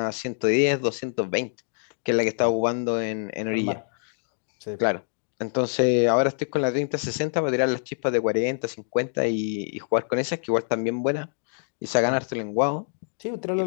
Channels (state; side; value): silent; right; digital silence